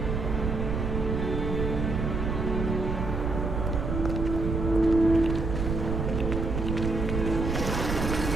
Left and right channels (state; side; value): noise; right; rumble, 2 dB below the sound